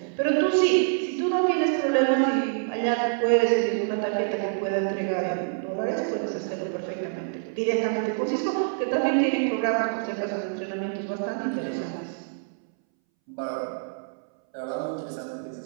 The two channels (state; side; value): silent; left; 61 dB below the other